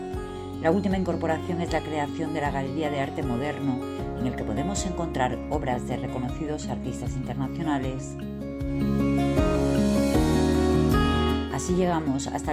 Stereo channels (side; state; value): both; identical; correlation 1.00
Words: La última incorporación es la creación de la Galería de Arte Moderno, en el que podemos encontrar obras de reconocidos artistas internacionales. Así llegamos hasta